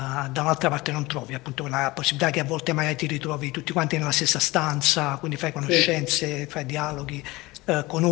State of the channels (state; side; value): quieter; right; 21.0 dB